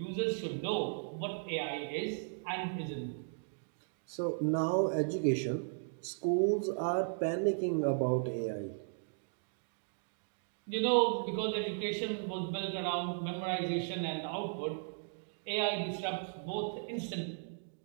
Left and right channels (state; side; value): silent; left; digital silence